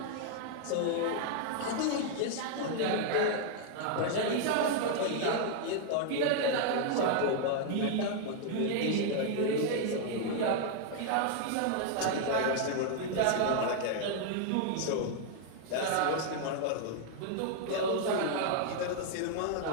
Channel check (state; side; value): different; both; correlation 0.00